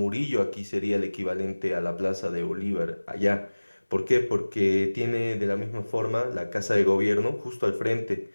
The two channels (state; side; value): inverted; both; correlation -1.00